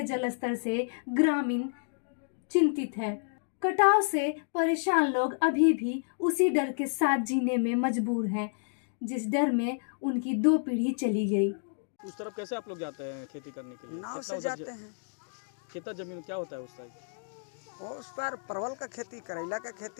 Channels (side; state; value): right; silent; digital silence